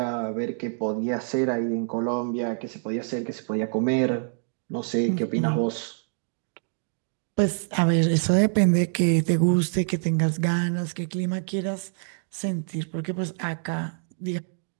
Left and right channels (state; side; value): silent; left; 61 dB below the other